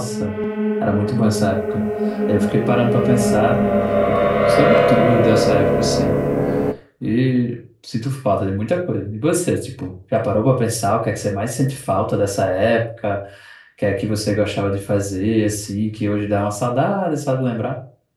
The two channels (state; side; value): identical; both; correlation 1.00